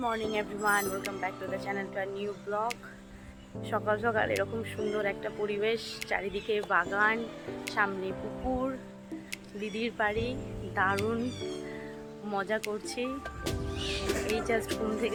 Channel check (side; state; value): both; identical; correlation 1.00